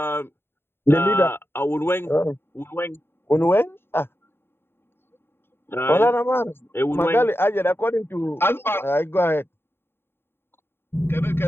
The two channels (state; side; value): late; right; 0.11 ms